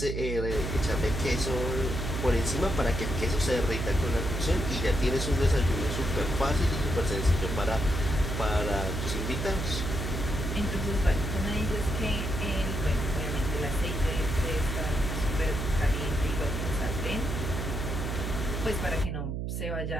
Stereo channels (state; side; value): noise; right; hum, 3 dB below the sound